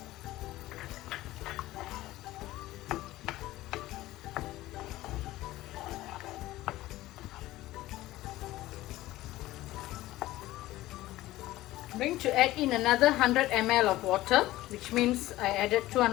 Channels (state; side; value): quieter; right; 16.7 dB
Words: I'm going to add in another 100 ml of water, which means I added